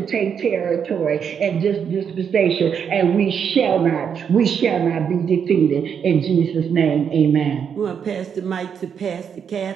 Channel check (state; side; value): quieter; left; 7.4 dB